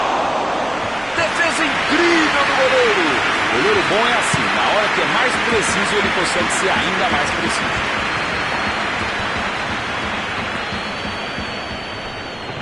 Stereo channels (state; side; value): noise; right; rumble, 25 dB below the sound